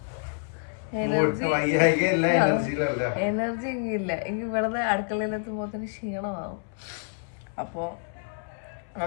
എനർജി ഇല്ല. എനിക്ക് ഇവിടുന്ന് അടുക്കളയിലെത്തുമ്പോ തന്നെ ക്ഷീണമാവും. അപ്പോ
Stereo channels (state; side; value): silent; right; 60 dB below the other